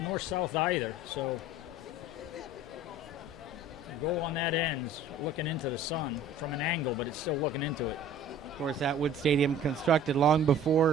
north-south either. So the goal on that end is looking into the sun from an angle, but it's still looking into it. Of course, Atwood Stadium constructed long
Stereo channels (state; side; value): normal; both; correlation 0.46